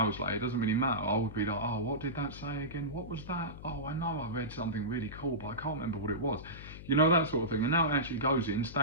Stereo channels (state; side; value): noise; left; hum, 13 dB below the sound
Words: later, it doesn't really matter. I would be like, oh, what did that say again? What was that? Oh, I know I read something really cool, but I can't remember what it was. You know, that sort of thing. And now it actually goes in,